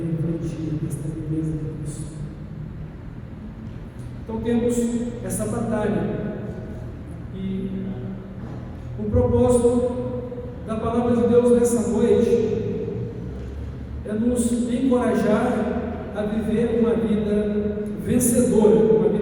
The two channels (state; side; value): identical; both; correlation 1.00